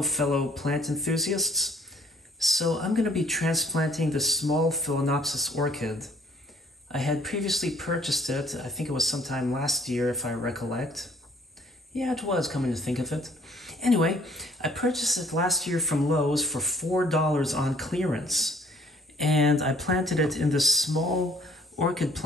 fellow plant enthusiasts. So I'm going to be transplanting the small Phalaenopsis orchid. I had previously purchased it, I think it was sometime last year if I recollect. Yeah, it was, coming to think of it. Anyway, I purchased it last year from Lowe's for $4 on clearance. And I planted it in this small orchid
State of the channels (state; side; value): normal; both; correlation 0.59